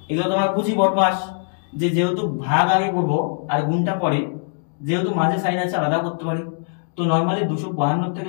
এগুলো তোমরা বুঝি বদমাস, যে যেহেতু ভাগ আগে করবো আর গুণটা পরে, যেহেতু মাঝে সাইন আছে আলাদা করতে পারি। তো নরমালি 252 থেকে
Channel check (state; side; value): silent; right; 59 dB below the other